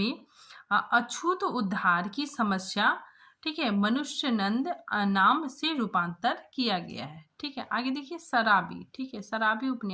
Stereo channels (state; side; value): identical; both; correlation 1.00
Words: अछूत उद्धार की समस्या, ठीक है, मनुष्य नंद नाम से रूपांतर किया गया है। ठीक है, आगे देखिए, शराबी। ठीक है, शराबी